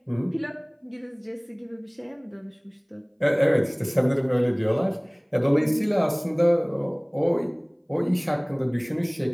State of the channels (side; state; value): both; identical; correlation 1.00